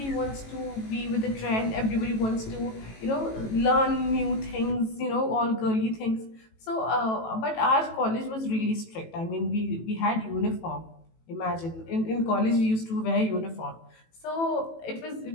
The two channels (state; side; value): late; right; 18 ms